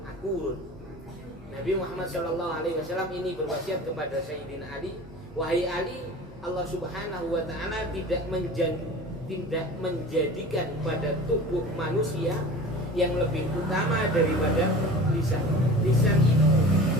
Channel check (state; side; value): normal; both; correlation 0.38